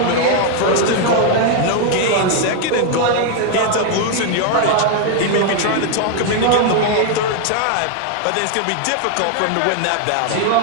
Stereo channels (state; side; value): different; both; correlation 0.00